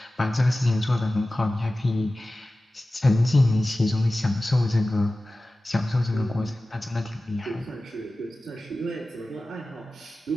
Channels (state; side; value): normal; both; correlation 0.96